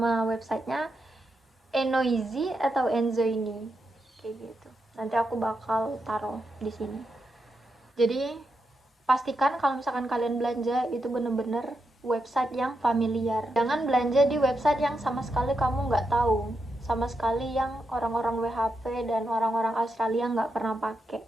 websitenya Enoizi atau Enzoini kayak gitu. Nanti aku bakal taruh di sini. Jadi pastikan kalau misalkan kalian belanja itu bener-bener website yang familiar. Jangan belanja di website yang sama sekali kamu nggak tahu, sama sekali yang orang-orang WHP dan orang-orang Australia nggak pernah pakai.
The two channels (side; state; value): both; normal; correlation 0.85